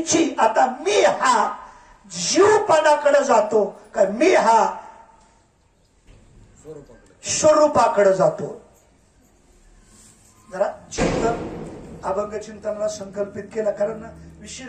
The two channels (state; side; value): identical; both; correlation 1.00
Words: आता मी हा जीवपणाकडे जातो का मी हा स्वरूपाकडे जातो? जरा चिंतन अभंग चिंतनाला संकल्पित केला. कारण